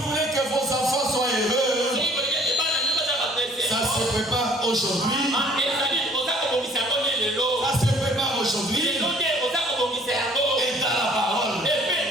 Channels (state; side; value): normal; both; correlation 0.57